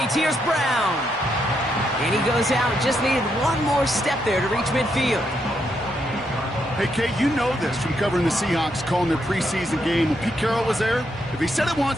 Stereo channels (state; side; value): normal; both; correlation 0.79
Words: Here's Brown. And he goes out. Just needed one more step there to reach midfield. Hey, Kate, you know this from covering the Seahawks, calling their preseason game. When Pete Carroll was there, if he said it